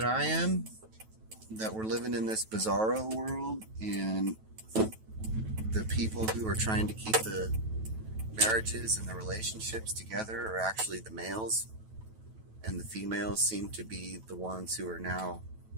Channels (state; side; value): late; left; 9.2 ms